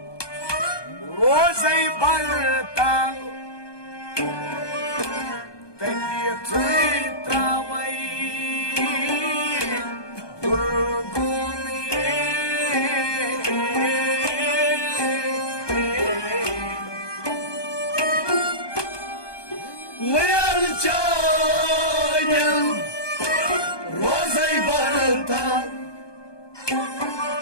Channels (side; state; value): right; late; 1.2 ms